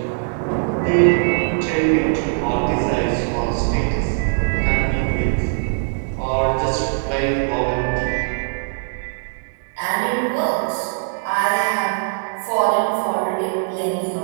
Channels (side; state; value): left; silent; 65 dB below the other